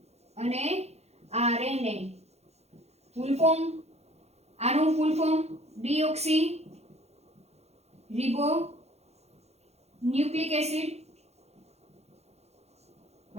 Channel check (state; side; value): late; left; 0.31 ms